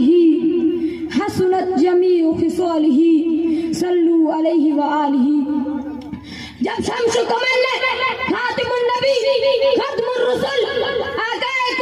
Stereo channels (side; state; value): both; identical; correlation 1.00